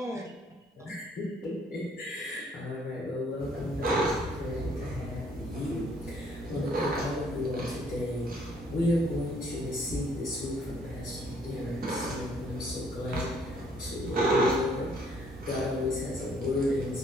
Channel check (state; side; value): normal; both; correlation 0.64